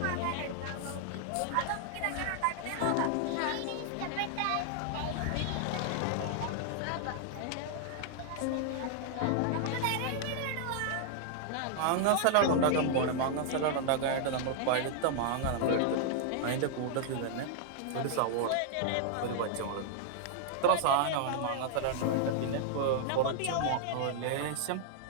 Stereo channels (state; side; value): different; both; correlation -0.01